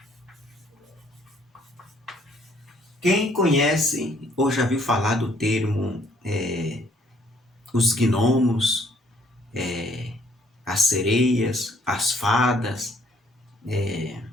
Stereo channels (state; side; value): normal; both; correlation 0.64